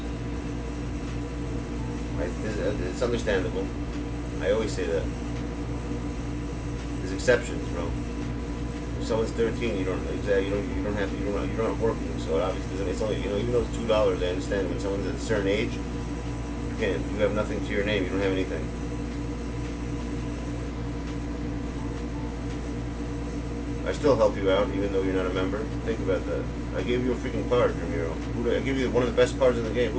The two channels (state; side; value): identical; both; correlation 1.00